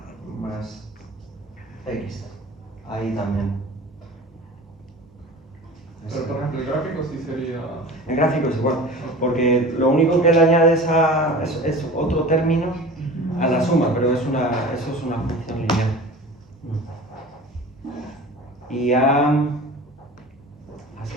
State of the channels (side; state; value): both; normal; correlation 0.38